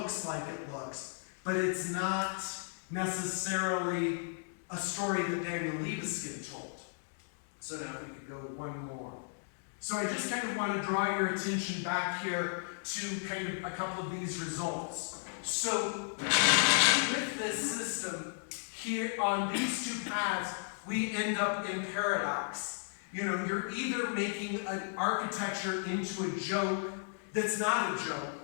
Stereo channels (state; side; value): silent; right; digital silence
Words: like it looks, but it's not necessarily a story that Daniel Libeskind told. So now we could go one more. So I just kind of want to draw your attention back here to kind of a couple of these results. So with this system, here on these two paths, we end up in paradox. You're either making an architecture into a joke that's not a joke,